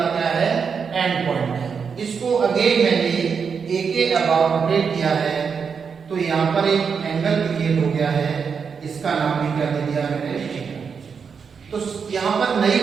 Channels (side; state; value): left; quieter; 6.1 dB